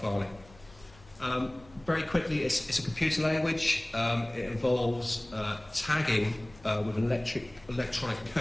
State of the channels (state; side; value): noise; left; hum, 24 dB below the sound